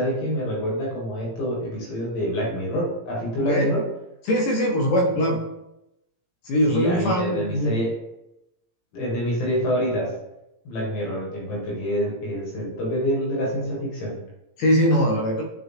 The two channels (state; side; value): late; right; 17 ms